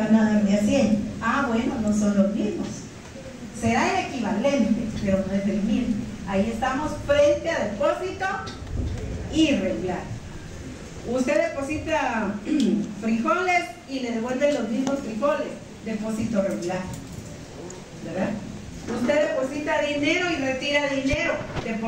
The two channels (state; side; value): identical; both; correlation 1.00